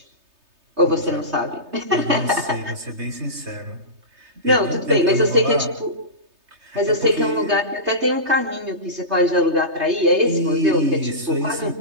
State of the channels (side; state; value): left; late; 3.3 ms